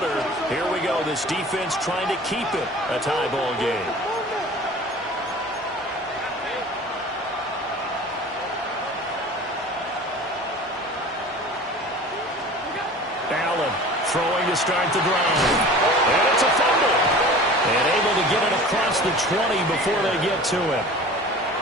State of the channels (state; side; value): normal; both; correlation 0.41